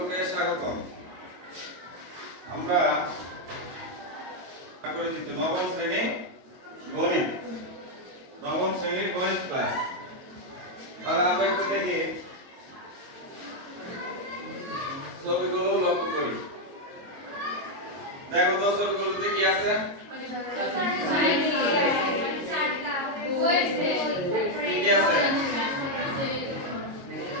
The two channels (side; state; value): left; late; 22 ms